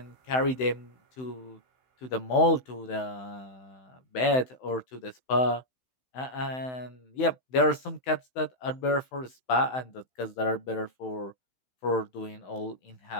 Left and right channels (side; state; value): right; late; 16 ms